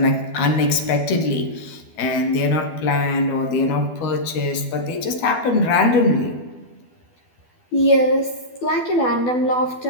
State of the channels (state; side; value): late; right; 12 ms